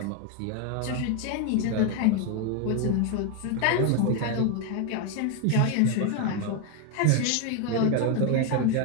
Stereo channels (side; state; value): both; different; correlation 0.01